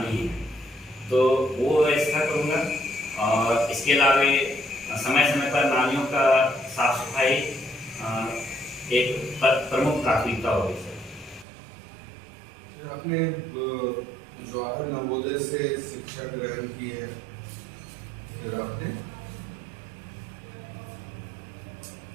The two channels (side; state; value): left; drops out; at 11.5 s